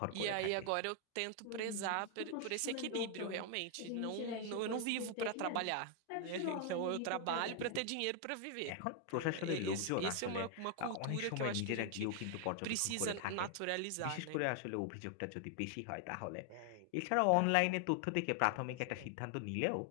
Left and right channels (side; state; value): both; different; correlation 0.00